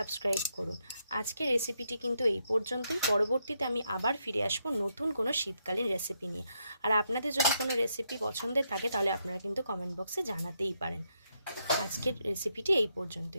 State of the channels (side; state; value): both; inverted; correlation -0.79